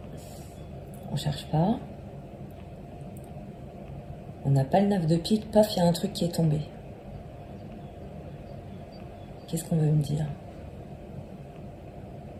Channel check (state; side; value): identical; both; correlation 1.00